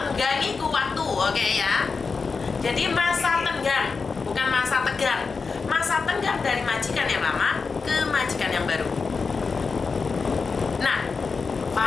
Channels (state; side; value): quieter; right; 4.8 dB